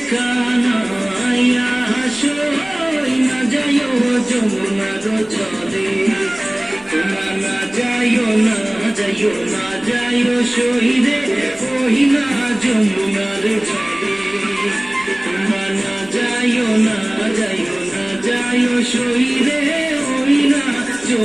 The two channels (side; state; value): left; noise; rumble, 28 dB below the sound